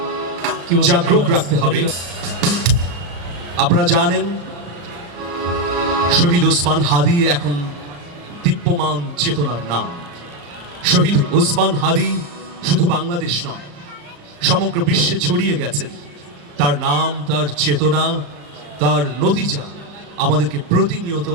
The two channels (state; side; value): late; left; 35 ms